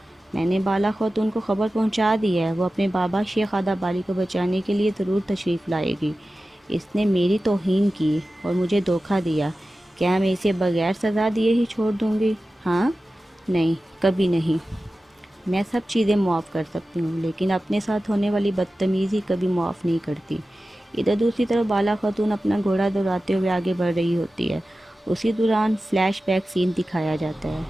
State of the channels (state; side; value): normal; both; correlation 0.95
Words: میں نے بالا خاتون کو خبر پہنچا دی ہے، وہ اپنے بابا شیخ آدھا بالی کو بچانے کے لیے ضرور تشریف لائے گی۔ اس نے میری توہین کی اور مجھے دھوکہ دیا، کیا میں اسے بغیر سزا دیے ہی چھوڑ دوں گی؟ ہاں، نہیں، کبھی نہیں۔ میں سب چیزیں معاف کر سکتی ہوں، لیکن اپنے ساتھ ہونے والی بدتمیزی کبھی معاف نہیں کرتی۔ ادھر دوسری طرف بالا خاتون اپنا گھوڑا دوڑاتے ہوئے آگے بڑھ رہی ہوتی ہے۔ اسی دوران فلیش بیک سین دکھایا جاتا ہے